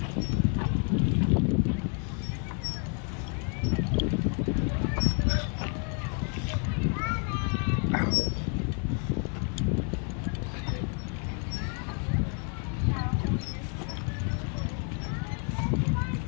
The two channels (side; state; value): right; quieter; 38.6 dB